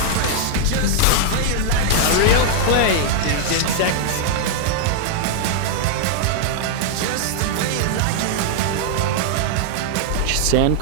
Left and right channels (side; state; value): both; different; correlation 0.00